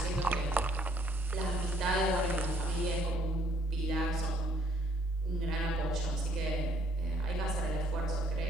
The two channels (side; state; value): both; normal; correlation 0.65